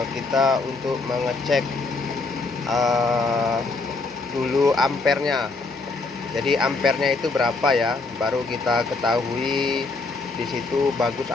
kita untuk mengecek dulu ampernya. Jadi ampernya itu berapa ya, baru kita ketahui di situ bagus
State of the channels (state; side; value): quieter; right; 3.7 dB